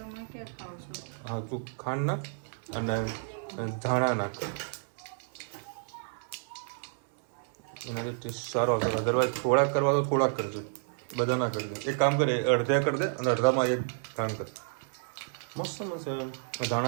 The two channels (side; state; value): left; silent; 56 dB below the other